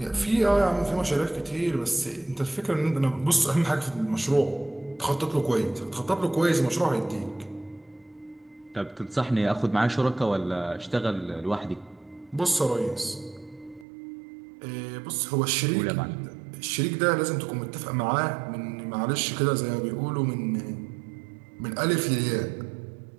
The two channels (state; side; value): drops out; left; at 13.9 s